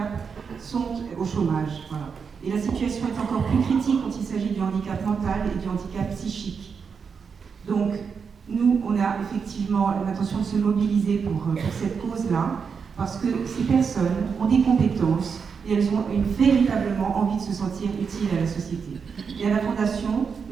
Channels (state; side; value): quieter; left; 6.0 dB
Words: sont au chômage. Voilà. Et la situation est encore plus critique quand il s'agit du handicap mental et du handicap psychique. Donc, nous, on a effectivement l'intention de se mobiliser pour cette cause-là, parce que ces personnes ont des compétences et elles ont véritablement envie de se sentir utiles à la société. Et à la Fondation,